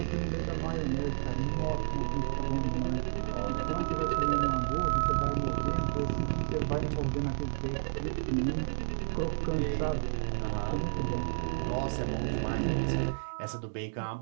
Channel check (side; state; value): left; silent; digital silence